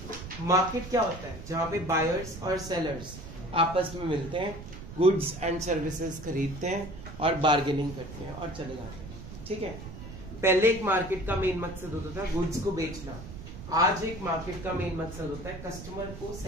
Market क्या होता है? जहाँ पे buyers और sellers आपस में मिलते हैं, goods and services खरीदते हैं और बार्गेनिंग करते हैं और चले जाते हैं. ठीक है. पहले एक मार्केट का मेन मकसद होता था गुड्स को बेचना. आज एक मार्केट का मेन मकसद होता है कस्टमर को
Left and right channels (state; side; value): noise; right; rumble, 12 dB below the sound